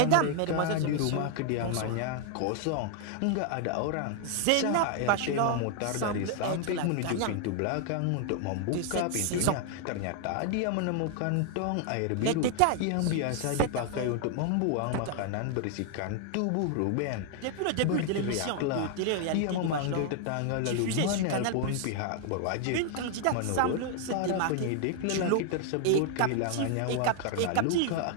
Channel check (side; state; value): both; different; correlation 0.00